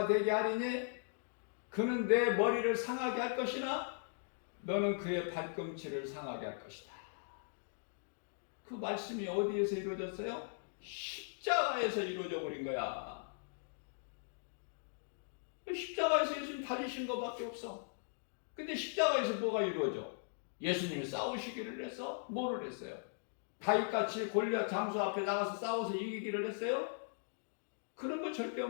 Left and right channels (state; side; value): silent; right; digital silence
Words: 되게 하리니 그는 내 머리를 상하게 할 것이나 너는 그의 발꿈치를 상하게 할 것이다. 그 말씀이 어디에서 이루어졌어요? 십자가에서 이루어져 버린 거야. 십자가에서 예수님 달리신 것밖에 없어. 근데 십자가에서 뭐가 이루어져? 예수님이 싸우시기를 해서 뭐를 했어요? 다윗같이 골리앗 장수 앞에 나가서 싸워서 이기기를 했어요? 그런 거 절대